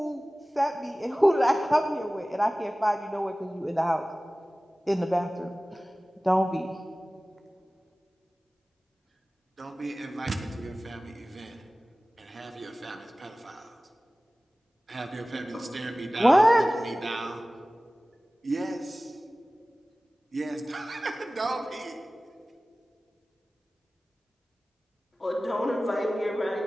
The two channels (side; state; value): both; normal; correlation 0.97